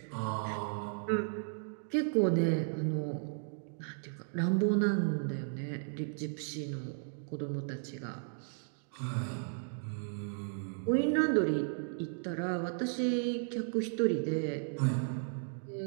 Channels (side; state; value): left; silent; digital silence